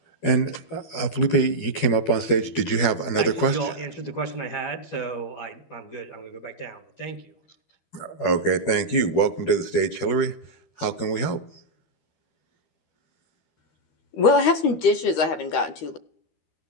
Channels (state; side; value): late; right; 13 ms